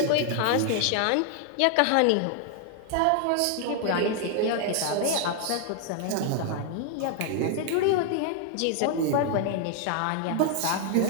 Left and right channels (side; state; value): both; different; correlation 0.00